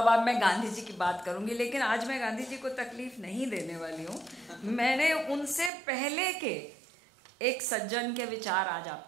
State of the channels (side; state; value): left; drops out; at 5.7 s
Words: मैं गांधी जी की बात करूंगी, लेकिन आज मैं गांधी जी को तकलीफ नहीं देने वाली हूं। मैंने उनसे पहले के एक सज्जन के विचार आज